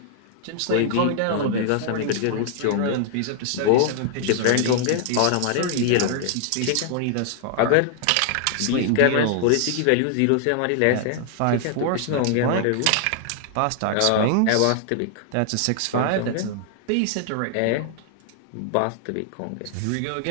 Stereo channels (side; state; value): both; different; correlation 0.00